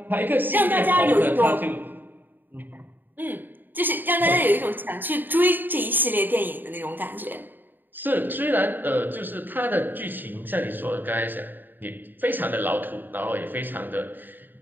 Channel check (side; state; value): left; late; 0.091 ms